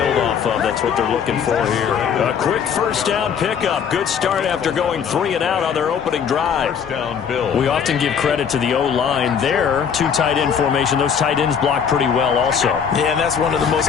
off of. That's what they're looking for here. A quick first down pickup. Good start after going 3 and out on their opening drive. First down, Bills. We often give credit to the O-line there. 2 tight end formation. Those tight ends block pretty well also. Yeah, and that's one of the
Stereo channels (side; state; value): right; quieter; 7.3 dB